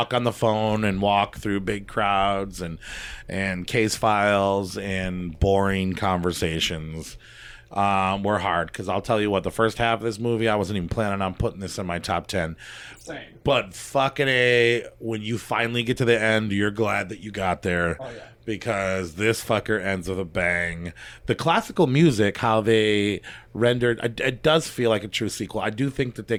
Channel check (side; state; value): both; identical; correlation 1.00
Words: on the phone and walk through big crowds and case files and boring conversations were hard, because I'll tell you what, the first half of this movie, I wasn't even planning on putting this in my top 10. Same. But fucking A, when you finally get to the end, you're glad that you got there. Oh, yeah. Because this fucker ends with a bang. The classical music, how they rendered, it does feel like a true sequel. I do think that they